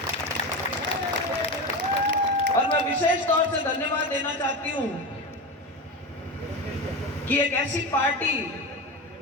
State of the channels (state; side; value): normal; both; correlation 0.22